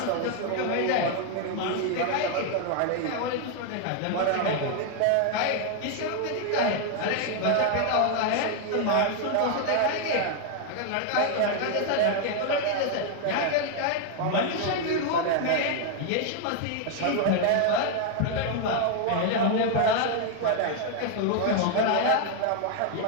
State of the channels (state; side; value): different; both; correlation 0.00